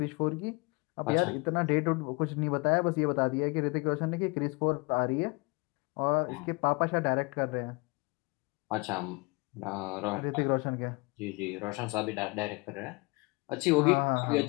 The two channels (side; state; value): right; quieter; 27.7 dB